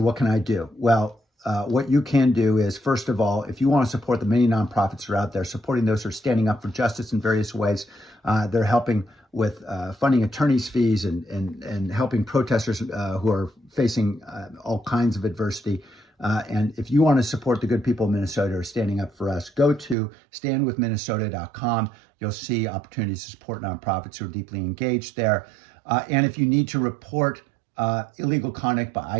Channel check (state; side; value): drops out; left; at 20.0 s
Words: what can I do? Well, what you can do is, first of all, if you want to support the many nonprofits that are out there, supporting those who are standing up for justice in various ways, they're helping with funding attorneys' fees and helping protesters who are facing all kinds of adversity. And if you want to support the good people of Minnesota who are standing up for us, go to standwithminnesota.com. You'll see opportunities to support nonprofits who are deeply engaged there. And if you need to report illegal conduct by